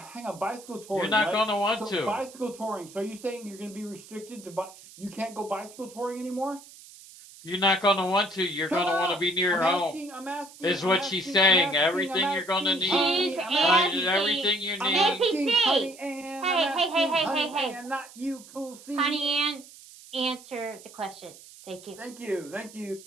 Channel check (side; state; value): right; noise; hiss, 20 dB below the sound